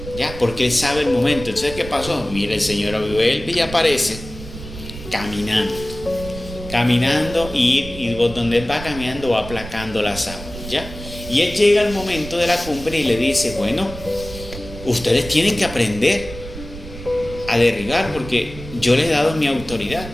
¿ya? Porque Él sabe el momento. Entonces, ¿qué pasó? Mira, el Señor vuelve y aparece caminando y donde Él va caminando va aplacando las aguas, ¿ya? Y Él llega al momento de la cumbre y le dice, bueno, ustedes tienen que aprender a derribar porque yo les he dado mi autoridad.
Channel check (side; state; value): right; noise; rumble, 13 dB below the sound